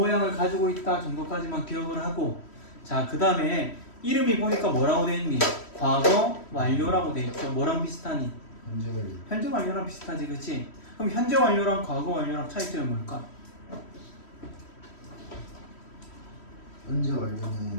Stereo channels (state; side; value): late; right; 3.1 ms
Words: 가지고 있다 정도까지만 기억을 하고 자, 그 다음에 이름이 보니까 뭐라고 돼 있니? 과거 완료라고 돼 있죠. 뭐랑 비슷하니? 현재 완료. 현재 완료랑 비슷하지, 그치? 그럼 현재 완료랑 과거 완료랑 차이점이 뭘까? 현재